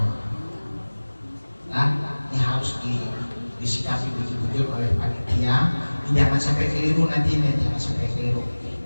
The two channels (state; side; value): inverted; both; correlation -1.00